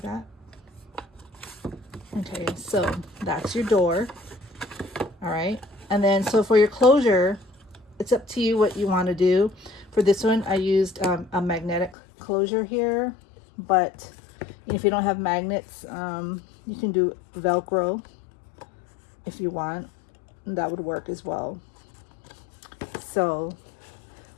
Okay, so that's your door. All right, and then so for your closure, it's up to you what you want to do. For this one, I used a magnetic closure here, but if you don't have magnets, you can do Velcro if you want. That would work as well. So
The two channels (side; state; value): right; drops out; at 12.0 s